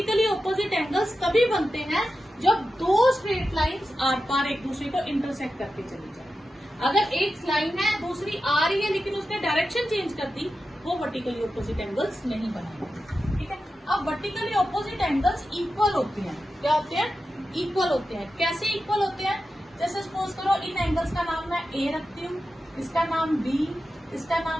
ऑपोजिट एंगल्स तभी बनते हैं जब दो स्ट्रेट लाइंस आर पार एक दूसरे को इंटरसेक्ट करके चली जाए। अगर एक लाइन है दूसरी आ रही है लेकिन उसने डायरेक्शन चेंज कर दी, वो वर्टिकली ऑपोजिट एंगल्स नहीं बनाएंगे। ठीक है, अब वर्टिकली ऑपोजिट एंगल्स इक्वल होते हैं। क्या होते हैं? इक्वल होते हैं। कैसे इक्वल होते हैं? जैसे सपोज करो इन एंगल्स का नाम मैं A रखती हूँ, इसका नाम B, इसका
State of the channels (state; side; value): normal; both; correlation 0.91